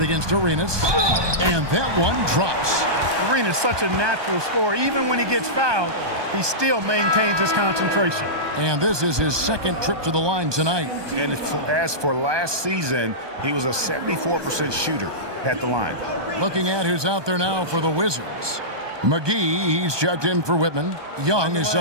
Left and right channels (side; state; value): left; late; 1.2 ms